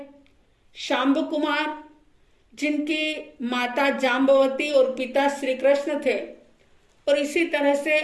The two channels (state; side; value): identical; both; correlation 1.00